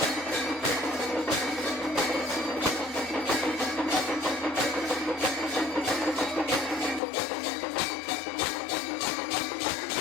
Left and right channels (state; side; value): drops out; right; at 7.0 s